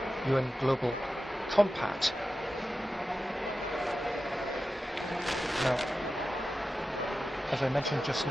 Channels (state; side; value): normal; both; correlation 0.93